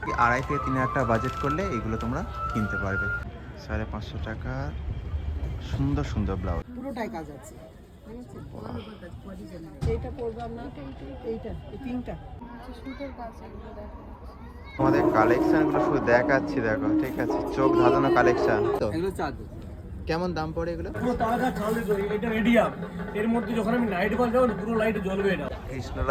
2,500 থেকে 3,000 টাকা বাজেট করলে এগুলো তোমরা কিনতে পারবে। 550 টাকা সুন্দর সুন্দর ব্লাউজ, পুরোটাই কাজ আছে। এইটা পরবো না, এইটা এই পিঙ্কটা সুন্দর কাজ এগুলো দেখো। আমাদের কালেকশনগুলো শুধু দেখাচ্ছি, দেখো ঠিক আছে, চোখ ধাঁধানো কালেকশন। তো এগুলো চাদর কেমন দাম পড়ে এগুলো? পুরো তাজা চাল, এটা রেডিয়াম। এর মধ্যে যখন আমি নাইট বাল যাবো পুরো লাইট জ্বলবে। এটা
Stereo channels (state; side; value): identical; both; correlation 1.00